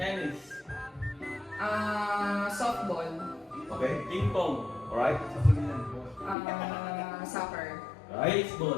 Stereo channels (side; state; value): right; drops out; at 6.4 s